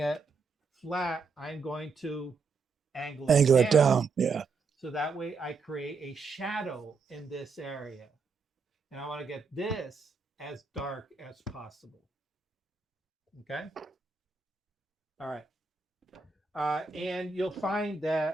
flat, I'm going to angle it down. Yeah. So that way I create a shadow in this area. And I want to get this as dark as possible. Okay. All right. And you'll find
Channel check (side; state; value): left; quieter; 4.6 dB